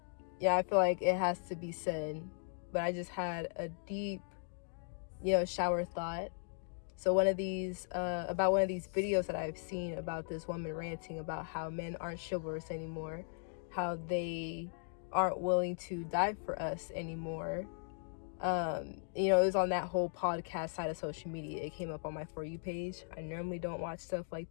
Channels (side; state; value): right; silent; digital silence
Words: yeah, I feel like it has to be said. But I just had a deep, shower thought. So about one of these videos that I've seen about this woman ranting about how men aren't chivalrous anymore, how they aren't willing to die for us anymore. It was on that whole podcast side of social media. It came up on my For You page. I normally don't watch stuff